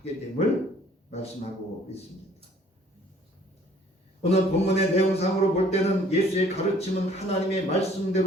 됨을 말씀하고 있습니다. 오늘 본문의 내용상으로 볼 때는 예수의 가르침은 하나님의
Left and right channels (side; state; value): both; normal; correlation 0.57